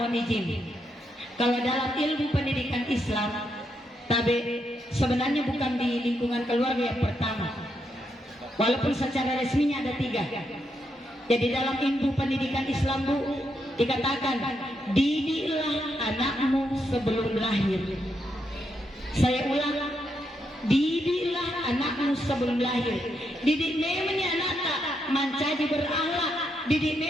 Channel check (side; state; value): both; normal; correlation 0.80